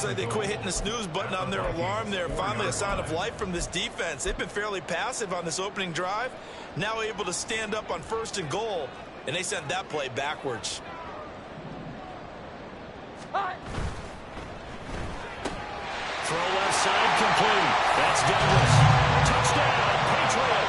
like they quit hitting the snooze button on their alarm there. Finally a sign of life from this defense. They've been fairly passive on this opening drive. Now able to stand up on 1st and goal, and they sent that play backwards. Throw left side complete. That's Douglas. Touchdown,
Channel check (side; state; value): both; identical; correlation 1.00